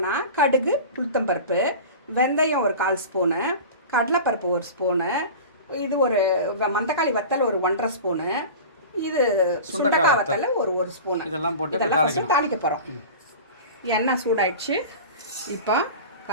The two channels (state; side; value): inverted; both; correlation -0.34